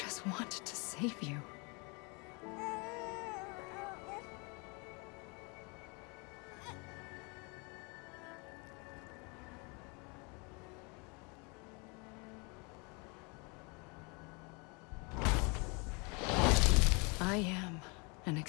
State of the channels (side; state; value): right; quieter; 31.3 dB